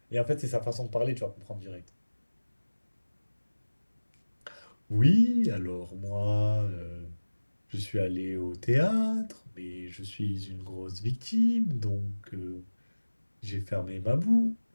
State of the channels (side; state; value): both; inverted; correlation -1.00